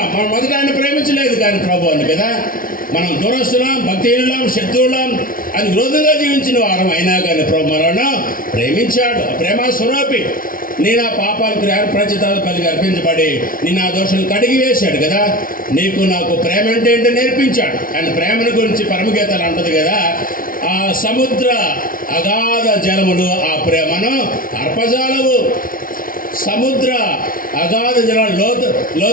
మనం మొదట ఆయన ప్రేమించలేదు కానీ ప్రభు అని కదా. మనం దురస్తులం, భక్తిహీనులం, శత్రువులం అని విరోధంగా జీవించిన వారం అయినా కానీ ప్రభు మనల్ని ప్రేమించాడు. ప్రేమ స్వరూపి. నీ నా పాపాలకు ప్రచితాలు పలికి అర్పించబడి నీ నా దోషాలు కడిగి వేశాడు కదా. నీకు నాకు ప్రేమ అంటే ఏంటో నేర్పించాడు. ఆయన ప్రేమను గురించి పరమగీతాలు అంటది కదా, ఆ సముద్ర అగాధ జలములు ఆ ప్రేమను అర్పజాలవు. సముద్ర అగాధ జలాలు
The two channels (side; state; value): right; late; 0.41 ms